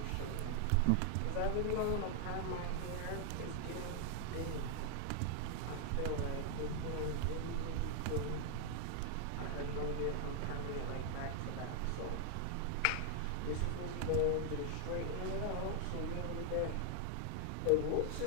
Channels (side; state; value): both; different; correlation 0.00